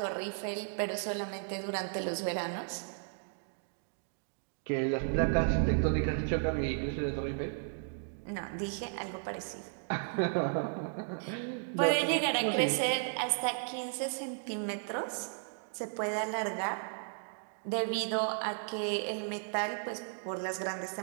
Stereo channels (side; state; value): left; silent; digital silence